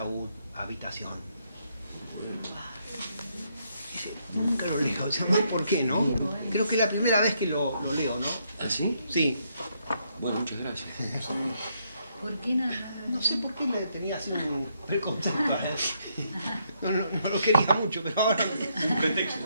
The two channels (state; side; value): inverted; both; correlation -0.75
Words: habitación. Nunca lo leo, ¿sabes por qué, no? Creo que es la primera vez que lo leo, ¿no? ¿Ah, sí? Sí. Bueno, muchas gracias. ¿Por qué nada? No sé por qué le tenía así un preconcepto a él. No lo quería mucho, pero ahora... Un pretexto.